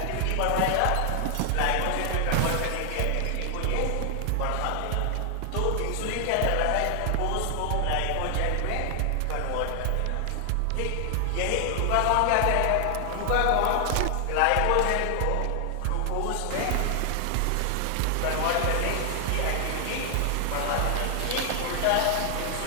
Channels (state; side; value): different; both; correlation 0.00